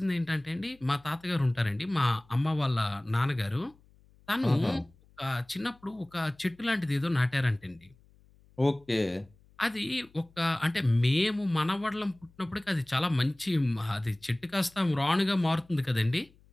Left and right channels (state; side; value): noise; left; hum, 29 dB below the sound